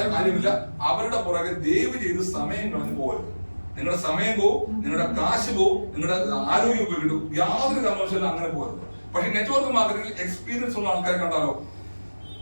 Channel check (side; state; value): both; inverted; correlation -1.00